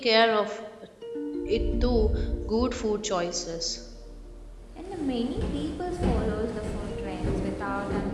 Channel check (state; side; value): identical; both; correlation 1.00